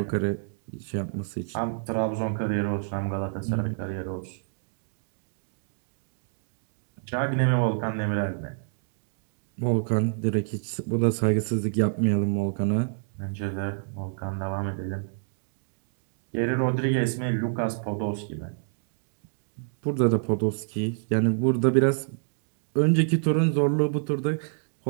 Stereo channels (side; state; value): left; silent; digital silence